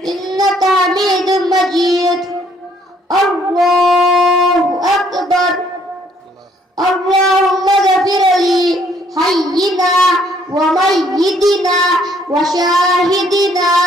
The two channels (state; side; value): normal; both; correlation 0.64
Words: ইন্নাকা হামিদুম মাজিদ। আল্লাহু আকবার। اللهم اغفر لي حينا وميتنا وشاهدنا